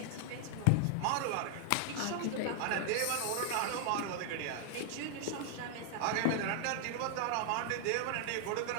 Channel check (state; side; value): different; both; correlation 0.00